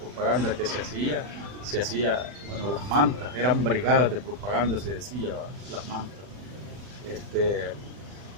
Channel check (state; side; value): late; left; 40 ms